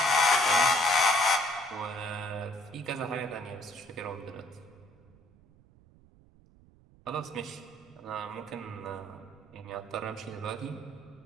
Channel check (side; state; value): right; noise; rumble, 27 dB below the sound